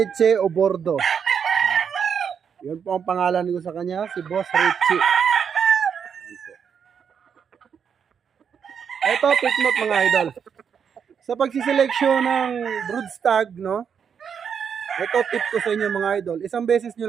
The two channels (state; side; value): quieter; left; 7.2 dB